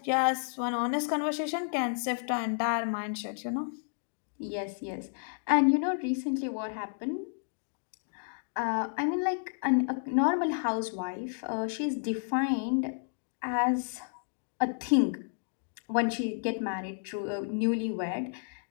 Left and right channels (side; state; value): right; silent; digital silence